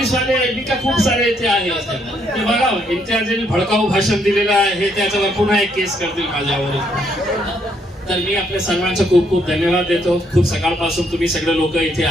वाले का खूप सारे इथे आहे ते बघा, इम्तियाजने भडकाऊ भाषण दिलेलं आहे त्याच्यावर पुन्हा एक केस करतील माझ्यावर. तर मी आपल्या सर्वांचं खूप खूप धन्यवाद देतो. खूप सकाळपासून तुम्ही सगळे लोक इथे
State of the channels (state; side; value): normal; both; correlation 0.72